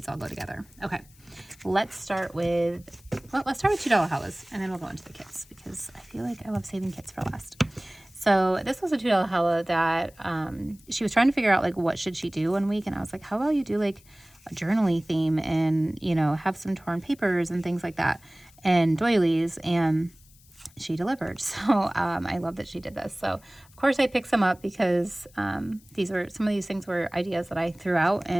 all go together. Okay. Let's start with $2 halas, and then we'll go into the kits because I feel like I love saving kits for last. So this was a $2 hala that she was trying to figure out like what should she do one week, and I was like, how about you do like a journaling theme and, you know, have some torn papers and things like that and doilies, and she delivered. So I love that she did this. So of course I picked some up because some of these things were ideas that I threw out,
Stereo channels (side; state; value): left; noise; hiss, 27 dB below the sound